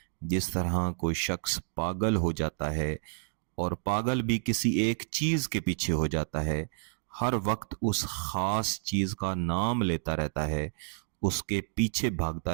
جس طرح کوئی شخص پاگل ہو جاتا ہے اور پاگل بھی کسی ایک چیز کے پیچھے ہو جاتا ہے، ہر وقت اس خاص چیز کا نام لیتا رہتا ہے، اس کے پیچھے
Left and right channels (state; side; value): silent; left; digital silence